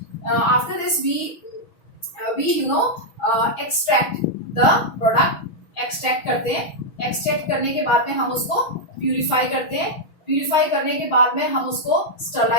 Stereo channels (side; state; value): right; late; 6.2 ms